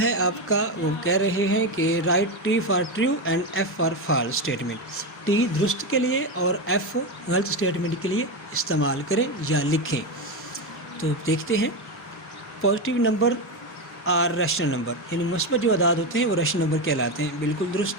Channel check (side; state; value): both; normal; correlation 0.13